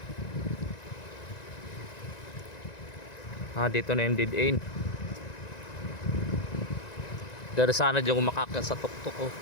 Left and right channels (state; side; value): late; right; 1.9 ms